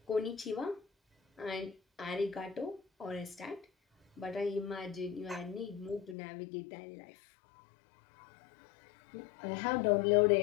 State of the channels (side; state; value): right; drops out; at 6.2 s